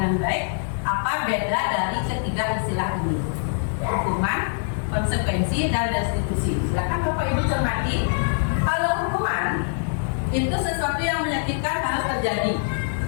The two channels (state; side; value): silent; right; 63 dB below the other